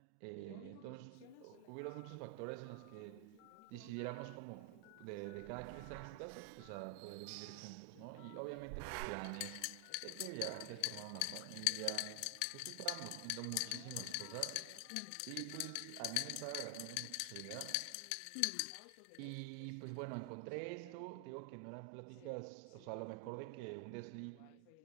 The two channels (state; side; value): different; both; correlation 0.00